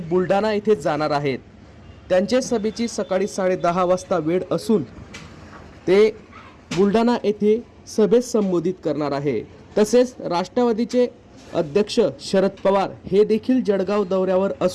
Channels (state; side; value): identical; both; correlation 1.00